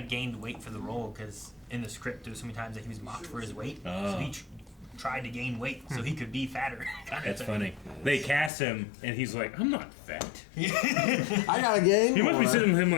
weight for the role because in the script there was so many times that he was mocked for his weight. So he tried to gain weight so he could be fatter. That's funny. They cast him, and he's like, I'm not fat. I gotta gain You must be more. sitting with him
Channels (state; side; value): drops out; right; at 8.5 s